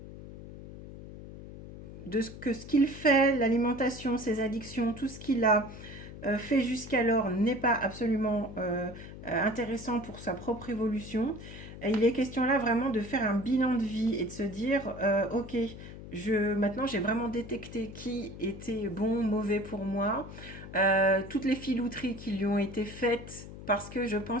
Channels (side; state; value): left; noise; hum, 13 dB below the sound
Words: de ce qu'il fait, l'alimentation, ses addictions, tout ce qu'il a fait jusqu'alors n'est pas absolument intéressant pour sa propre évolution. Et il est question là vraiment de faire un bilan de vie et de se dire ok, maintenant j'ai vraiment détecté qui était bon, mauvais pour moi, toutes les filouteries qui lui ont été faites parce que je